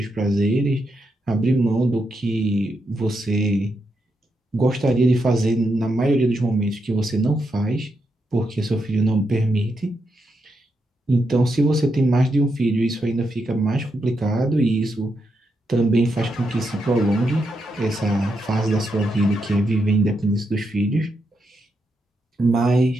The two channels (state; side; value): normal; both; correlation 0.83